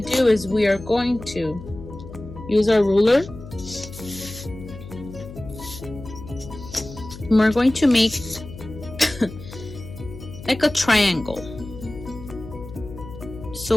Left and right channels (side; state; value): left; noise; hum, 14 dB below the sound